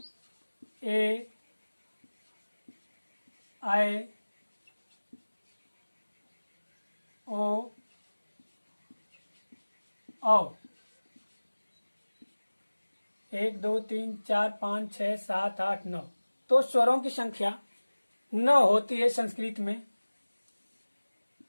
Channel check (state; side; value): inverted; both; correlation -1.00